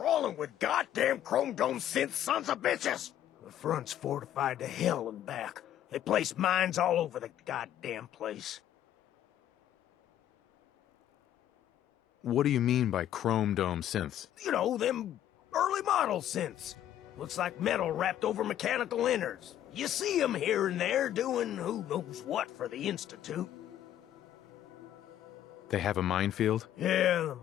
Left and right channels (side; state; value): right; quieter; 11.5 dB